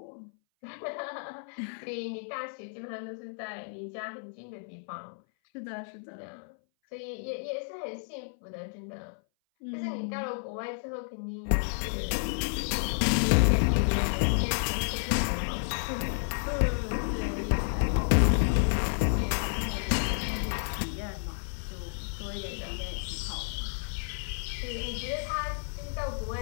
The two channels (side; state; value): right; silent; 57 dB below the other